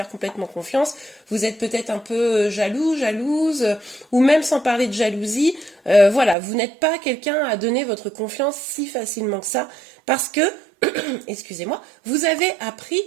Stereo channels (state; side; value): drops out; left; at 6.4 s